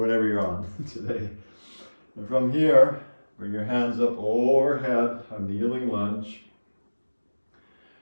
you're on today. And from here, bring your hands up overhead, a kneeling lunge.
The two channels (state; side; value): inverted; both; correlation -1.00